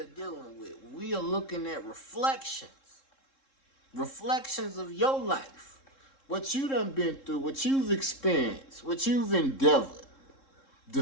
dealing with. We are looking at reflections of your life, what you done been through, what you've experienced, what you've endeavored, the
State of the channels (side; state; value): right; late; 3.7 ms